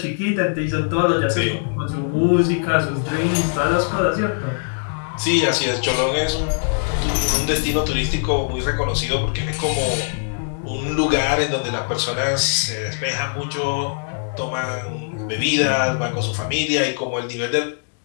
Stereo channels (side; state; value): right; silent; digital silence